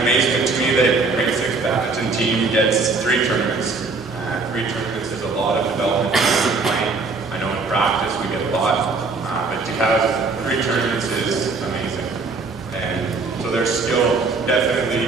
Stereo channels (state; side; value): quieter; left; 4.0 dB